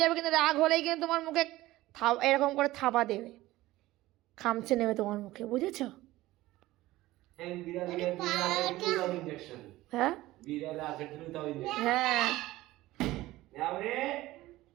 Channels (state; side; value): quieter; left; 17.3 dB